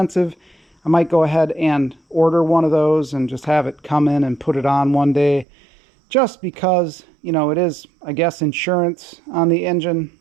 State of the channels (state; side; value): drops out; left; at 5.5 s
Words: I might go ahead and order one of those and just have it come in and put it on one day, just because, it is, I guess, insurance on the engine